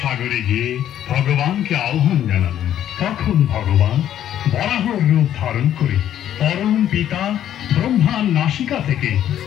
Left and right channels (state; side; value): quieter; right; 11.0 dB